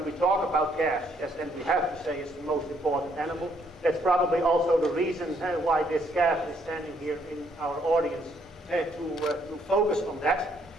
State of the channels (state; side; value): normal; both; correlation 0.70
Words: we talk about calves, yes, and we have to say it's the most important animal. That's probably also the reason why this calf is standing here in our audience, to focus on that.